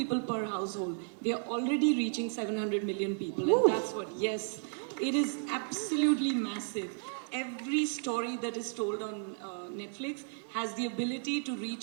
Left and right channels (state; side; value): silent; left; 55 dB below the other